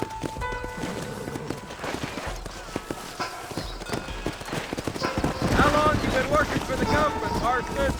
How long you been working for the government, Marston?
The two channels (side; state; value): both; identical; correlation 1.00